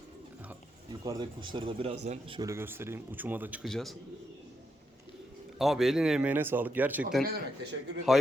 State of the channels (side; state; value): both; normal; correlation 0.81